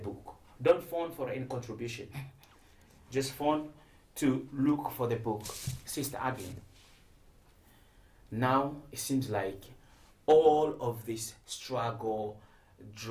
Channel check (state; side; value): identical; both; correlation 1.00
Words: Don't phone for any contribution. Just phone to look for the book. Sister Adelyn. Now it seems like all of this struggle,